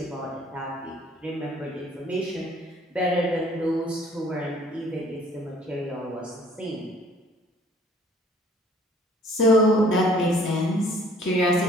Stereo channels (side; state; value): both; normal; correlation 0.56